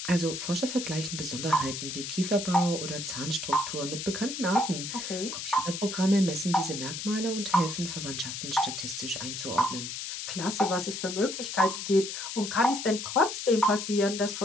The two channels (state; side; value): noise; left; hiss, 6 dB below the sound